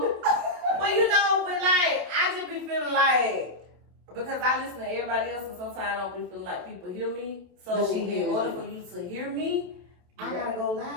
Well, but like I just be feeling like. Because I listen to everybody else, and sometimes I don't be feeling like people hear me. So But she hears in order you. for you to hear me, I gotta go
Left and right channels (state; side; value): late; left; 28 ms